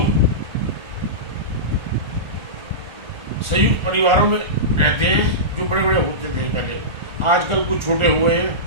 संयुक्त परिवारों में रहते हैं जो बड़े बड़े होते थे पहले। आजकल कुछ छोटे हुए हैं,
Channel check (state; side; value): late; left; 1.4 ms